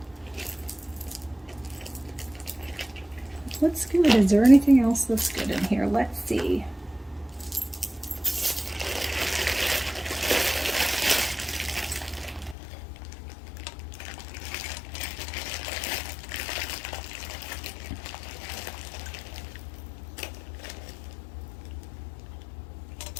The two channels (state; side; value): drops out; right; at 12.6 s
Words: What's good? Is there anything else that's good in here? Let's see.